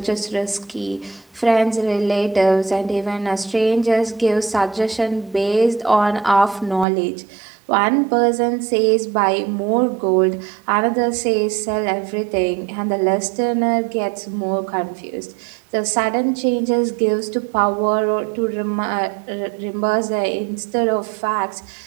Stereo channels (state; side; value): drops out; left; at 6.9 s